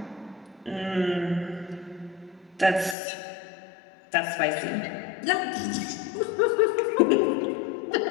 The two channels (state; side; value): drops out; right; at 3.0 s